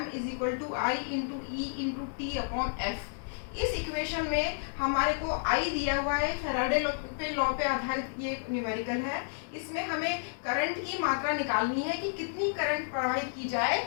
is equal to I into E into T upon F, इस इक्वेशन में हमारे को I दिया हुआ है, फैराडे लॉ पे आधारित ये न्यूमेरिकल है। इसमें हमें करंट की मात्रा निकालनी है कि कितनी करंट प्रवाहित की जाए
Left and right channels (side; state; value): right; silent; digital silence